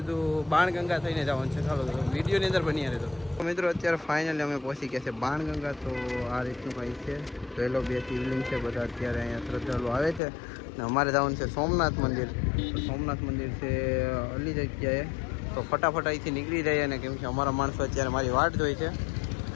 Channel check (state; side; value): drops out; right; at 10.2 s